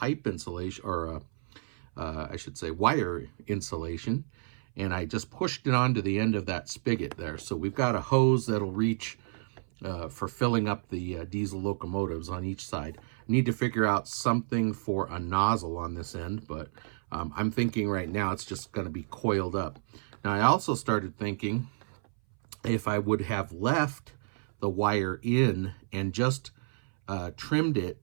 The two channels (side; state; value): left; silent; 57 dB below the other